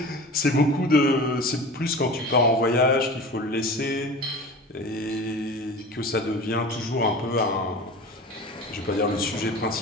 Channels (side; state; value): both; normal; correlation 0.35